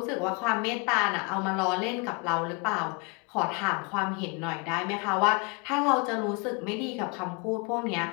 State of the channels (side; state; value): right; quieter; 31.2 dB